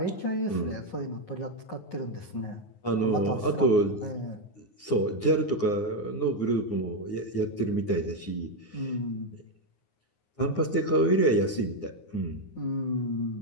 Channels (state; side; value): late; right; 9.6 ms